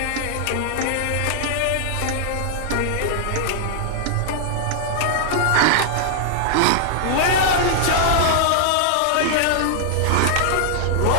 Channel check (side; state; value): both; different; correlation -0.01